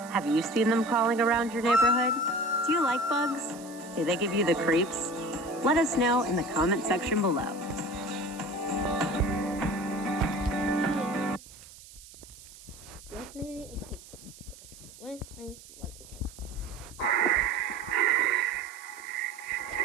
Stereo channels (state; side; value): noise; right; hiss, 19 dB below the sound